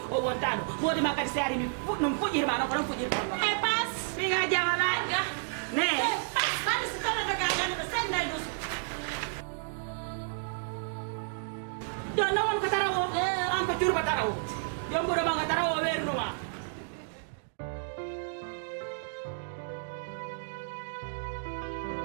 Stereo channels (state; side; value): silent; left; digital silence